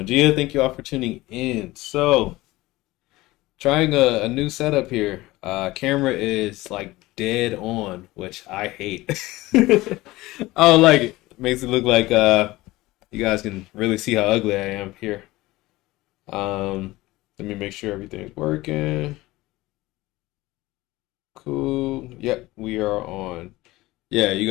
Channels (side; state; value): right; quieter; 19.1 dB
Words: dia. Thank you all for tuning in. So, trying a new setup here. Camera is like dead on, which I hate. I don't like it. Makes it look like you guys can really see how ugly I am here. Let me make sure everything's working. Cool. Yep, we are on. Yeah, you